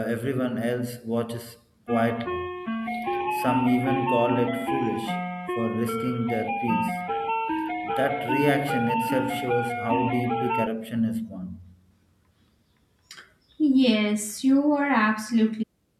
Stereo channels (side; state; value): both; identical; correlation 1.00